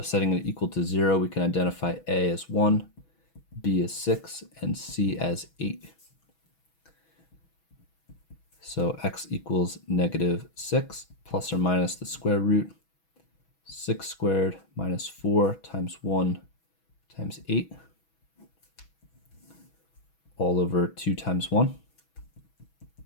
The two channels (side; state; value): right; late; 6.2 ms